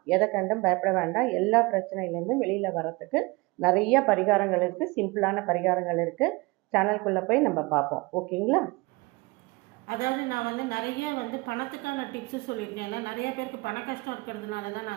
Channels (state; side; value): quieter; left; 24.9 dB